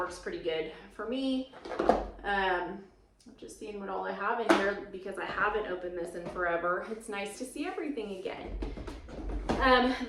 pretty good for me. I'm just seeing what all I have in here because I haven't opened this in forever. It's nice to see everything again.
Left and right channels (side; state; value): both; identical; correlation 1.00